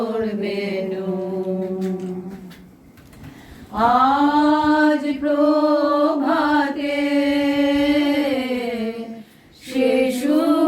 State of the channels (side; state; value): both; identical; correlation 1.00